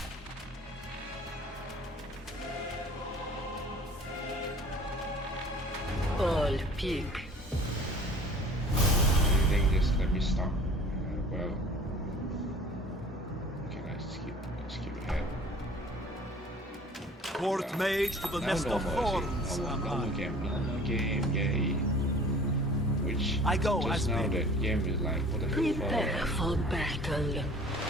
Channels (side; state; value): both; normal; correlation 0.47